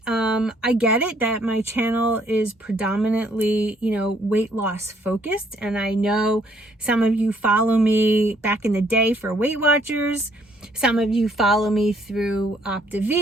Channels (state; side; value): normal; both; correlation 0.65